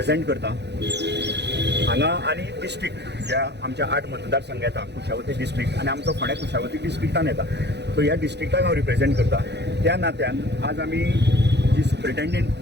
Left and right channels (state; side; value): late; left; 0.50 ms